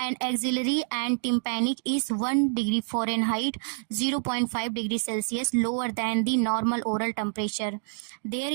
axillary and tympanic is 1 degree Fahrenheit 0.5 degree Celsius lower than the normal oral temperature. There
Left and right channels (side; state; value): left; silent; digital silence